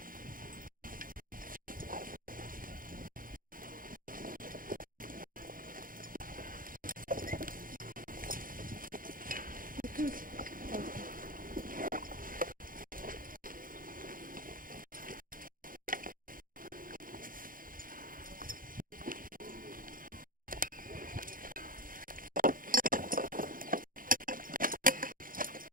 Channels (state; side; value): late; left; 0.40 ms